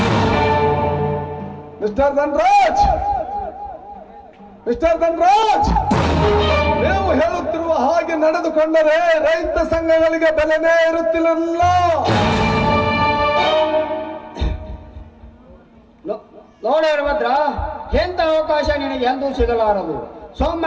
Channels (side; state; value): both; identical; correlation 1.00